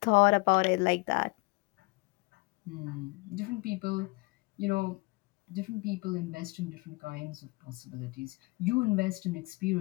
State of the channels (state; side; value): quieter; right; 26.0 dB